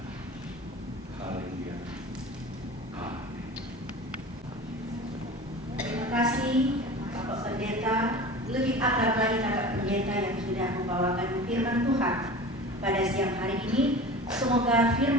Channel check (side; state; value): both; normal; correlation 0.36